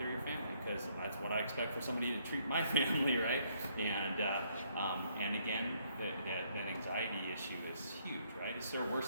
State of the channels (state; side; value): inverted; both; correlation -0.69